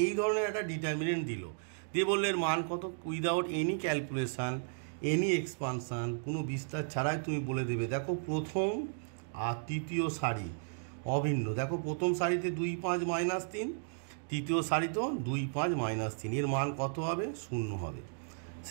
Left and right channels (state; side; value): silent; left; digital silence